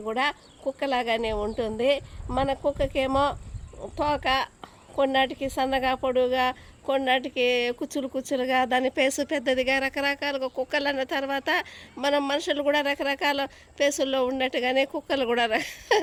కూడా కుక్కలాగానే ఉంటుంది. మన కుక్కకేమో తోక కొన్నాటికి సన్నగా పొడుగా, కొన్నాటికి కుచ్చులుగా, దాని పేసు పెద్దదిగా, రకరకాలుగా కుక్కలు అన్న తర్వాత మనం మనుషులు కూడా రకరకాల పేసుల్లో ఉన్నట్టుగానే కుక్కలు కూడా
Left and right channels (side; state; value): both; identical; correlation 1.00